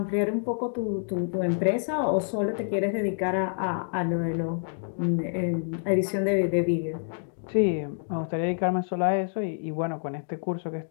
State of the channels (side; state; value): right; silent; digital silence